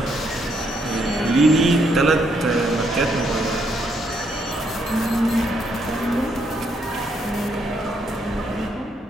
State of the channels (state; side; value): normal; both; correlation 0.74